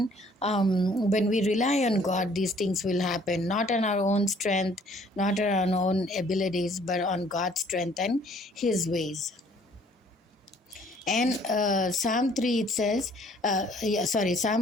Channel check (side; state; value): both; normal; correlation 0.59